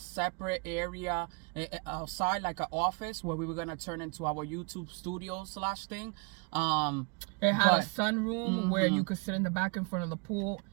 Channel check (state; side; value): quieter; left; 33.2 dB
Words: area outside, like an office where we were gonna turn into our YouTube studio / thing. It had a sunroom where you could sit in the back in front of the pool,